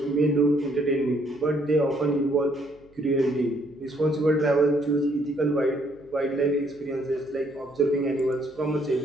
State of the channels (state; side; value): noise; right; hum, 29 dB below the sound